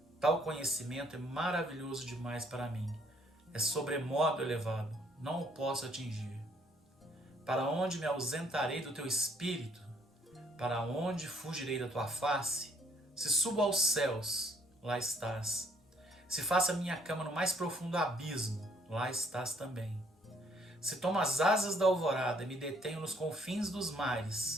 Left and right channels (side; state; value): both; normal; correlation 0.65